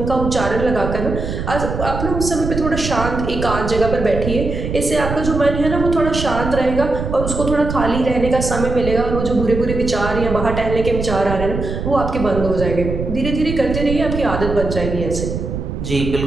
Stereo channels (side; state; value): right; noise; rumble, 5 dB below the sound